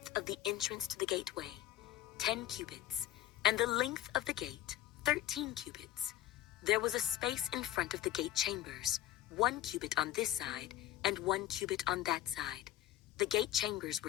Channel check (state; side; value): quieter; right; 13.5 dB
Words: of the entrance to the gateway, 10 cubits, and the length of the gate, 13 cubits. There was a space in front of the gate chambers, 1 cubit on this side and 1 cubit on that side. The gate chambers